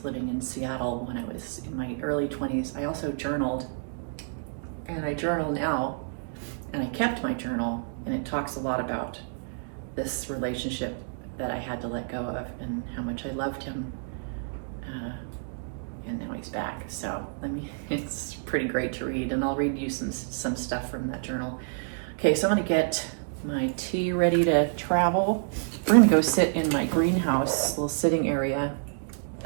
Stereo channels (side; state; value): left; silent; digital silence